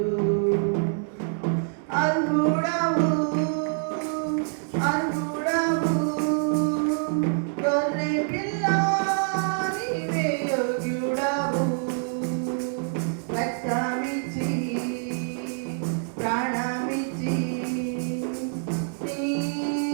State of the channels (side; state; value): left; silent; 61 dB below the other